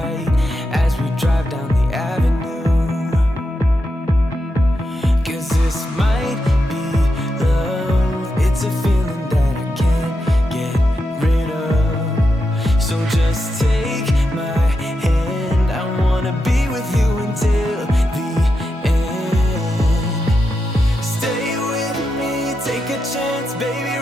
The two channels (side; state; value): both; normal; correlation 0.86